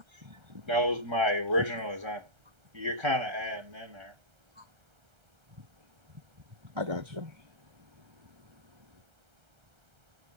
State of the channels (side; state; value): left; late; 1.3 ms